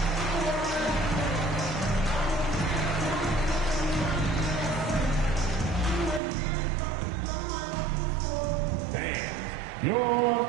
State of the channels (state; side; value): drops out; left; at 6.2 s